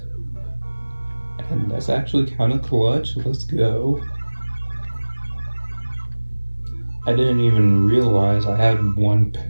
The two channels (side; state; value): both; inverted; correlation -1.00